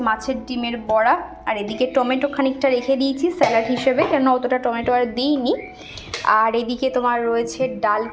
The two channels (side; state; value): both; identical; correlation 1.00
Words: মাছের ডিমের বড়া, আর এদিকে টমেটো খানিকটা রেখে দিয়েছি স্যালাড হিসেবে, কেন অতটা টমেটো আর দিইনি। আর এদিকে তোমার রয়েছে ডাল